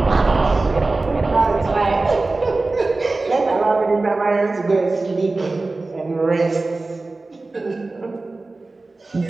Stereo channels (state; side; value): quieter; left; 3.3 dB